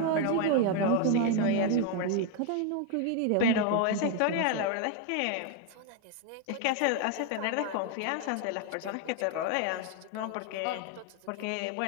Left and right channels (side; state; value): both; different; correlation 0.01